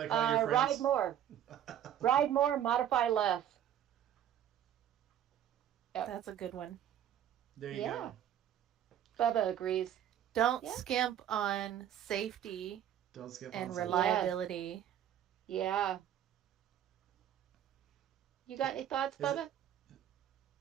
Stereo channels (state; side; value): quieter; left; 10.5 dB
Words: all your friends. Ride more. Ride more, modify less. Yep. That's a good one. There you go. Bubba agrees. Don't skimp on safety Don't skip and on reliability. Yeah. You got any thoughts, Bubba?